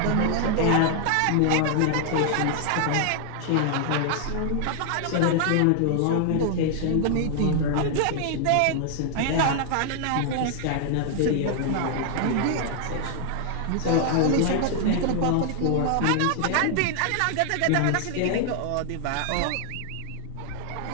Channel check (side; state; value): both; different; correlation 0.00